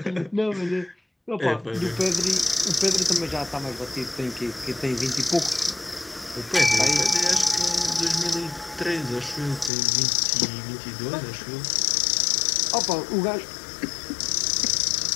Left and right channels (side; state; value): right; drops out; at 9.7 s